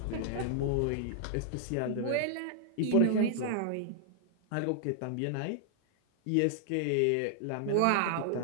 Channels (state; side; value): different; both; correlation -0.01